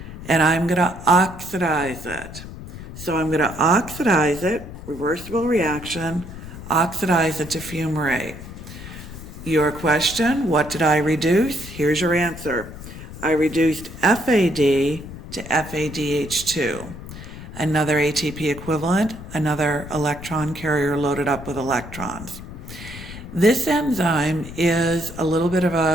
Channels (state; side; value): noise; left; rumble, 12 dB below the sound